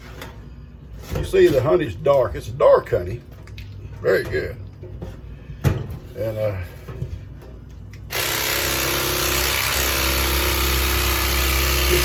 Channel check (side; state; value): both; identical; correlation 1.00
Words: You see the honey's dark. It's a dark honey. Very good. And you